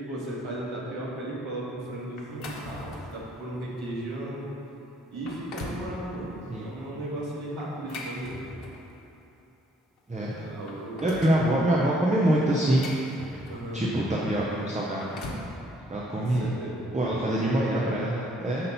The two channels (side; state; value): both; normal; correlation 0.67